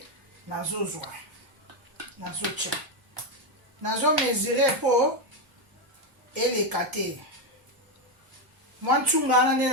nazozwa. Nazotia. Nazo mesurer po eleka te. Mwa ntsunga wana nde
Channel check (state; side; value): late; left; 1.1 ms